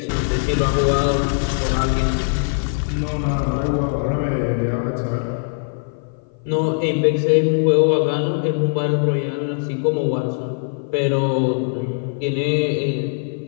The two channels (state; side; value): silent; right; 57 dB below the other